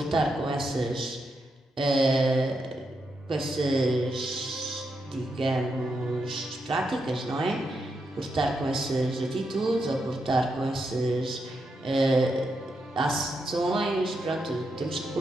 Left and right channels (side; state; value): both; normal; correlation 0.83